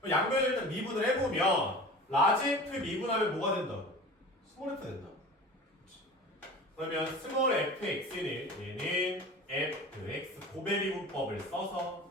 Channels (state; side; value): normal; both; correlation 0.37